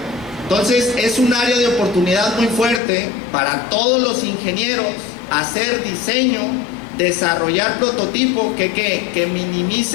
Entonces es un área de oportunidad muy fuerte para todos los ingenieros hacer diseño, desarrollar prototipo que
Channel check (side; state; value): right; drops out; at 2.8 s